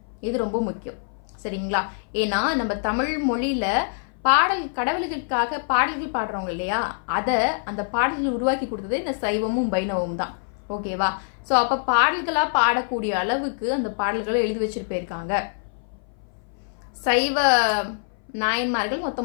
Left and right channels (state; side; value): silent; right; 59 dB below the other